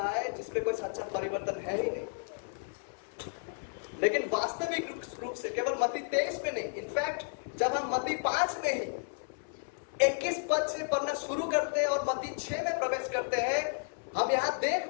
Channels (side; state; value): right; silent; 55 dB below the other